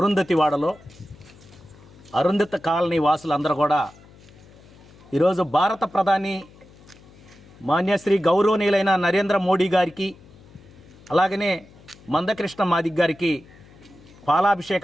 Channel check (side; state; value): left; noise; hum, 24 dB below the sound